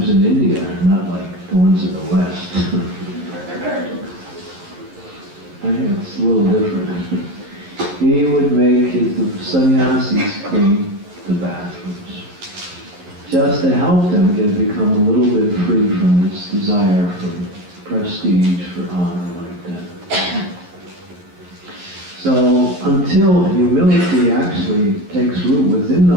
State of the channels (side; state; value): left; late; 11 ms